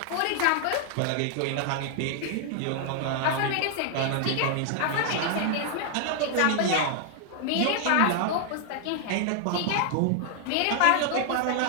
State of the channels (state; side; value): different; both; correlation 0.00